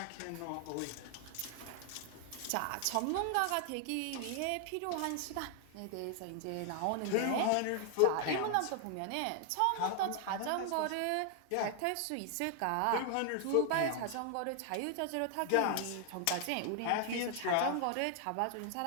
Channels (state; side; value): different; both; correlation 0.00